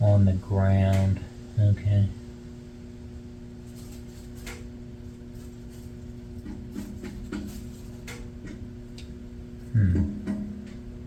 on the ground. Okay.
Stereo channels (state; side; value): identical; both; correlation 1.00